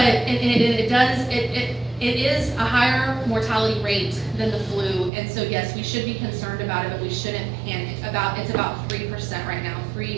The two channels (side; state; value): left; drops out; at 5.1 s